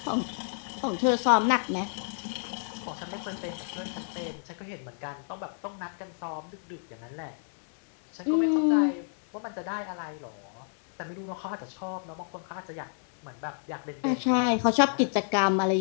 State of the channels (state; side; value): silent; right; digital silence